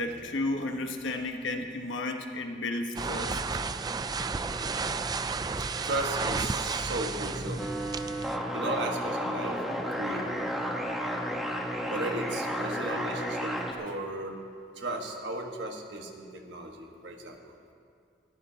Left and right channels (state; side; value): normal; both; correlation 0.42